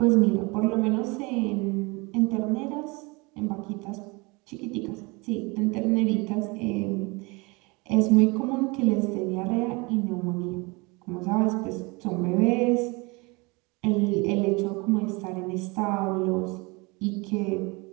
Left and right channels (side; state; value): left; quieter; 27.0 dB